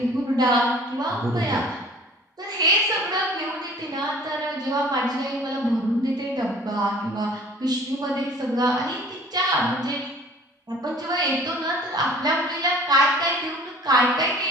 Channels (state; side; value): normal; both; correlation 0.49